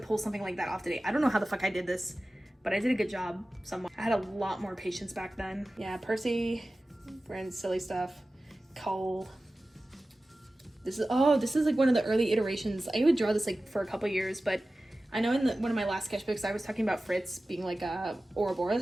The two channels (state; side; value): normal; both; correlation 0.96